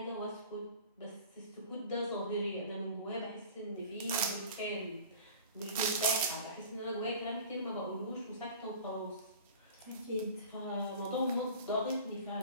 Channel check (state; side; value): inverted; both; correlation -0.42